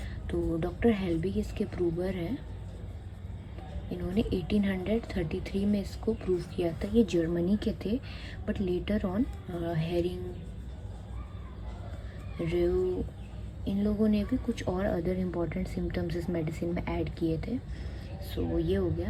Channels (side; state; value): both; identical; correlation 1.00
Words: तो डॉक्टर हेल्बिग इसके प्रूवर हैं। इन्होंने 1833 में इसको प्रूव किया था। ये जर्मनी के थे, बट लेटर ऑन हेरिंग, रेव, इन लोगों ने भी कुछ और अदर इम्पॉर्टेंट सिम्टम्स इस मेडिसिन में ऐड किए थे। सो ये हो गया।